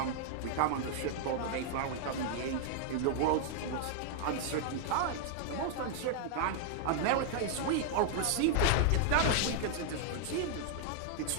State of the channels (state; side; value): different; both; correlation 0.00